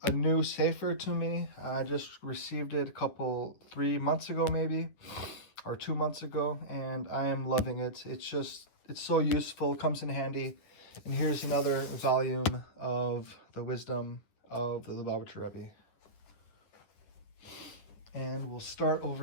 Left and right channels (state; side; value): late; right; 9.8 ms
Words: a new Sefer to me. I just received it 3 months ago maybe, or 2 months ago, and I am loving it. It's so useful, comes in handy. And here's another volume of the wisdom of the Lubavitcher Rebbe. And we'll start